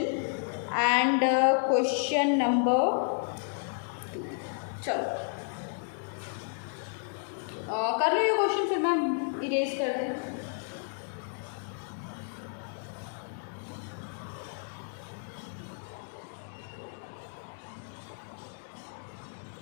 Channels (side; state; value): right; silent; 57 dB below the other